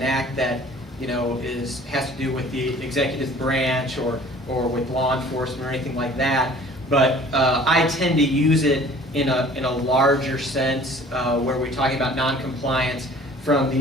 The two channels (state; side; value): normal; both; correlation 0.50